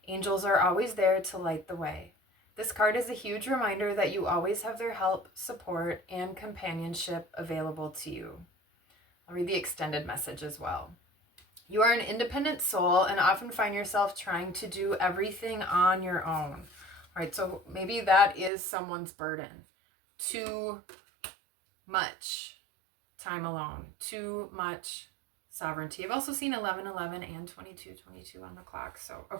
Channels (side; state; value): left; drops out; at 18.5 s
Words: Angels are always there to light the way. This card is a huge reminder that you always have their help, support, and companionship available to you. I'll read the extended message as well. You are an independent soul and often find yourself trying to do everything on your own. All right, so maybe that is someone's burden. Too much time alone, too much sovereignty. I've also seen 11:11 and 22:22 on the clock. So,